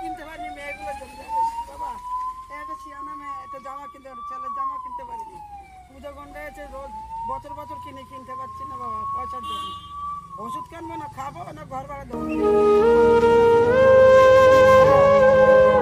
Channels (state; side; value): identical; both; correlation 1.00